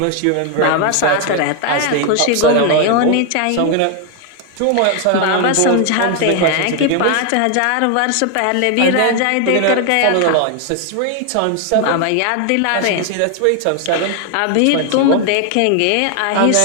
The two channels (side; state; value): both; different; correlation 0.00